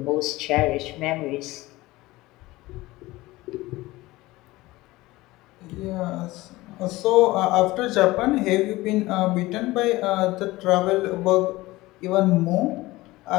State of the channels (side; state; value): right; quieter; 19.3 dB